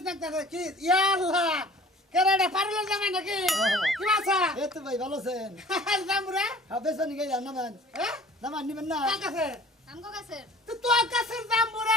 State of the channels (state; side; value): normal; both; correlation 0.47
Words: কি ইয়া আল্লাহ কেরাডা পারলো জামাই নাকি কি বাসা এ তো ভাই ভালো আছেন জামুরা হবে সনি গাই নামান নামান নিবেন না কাছে আমগো কাছের তো তোর কাছে জামুরা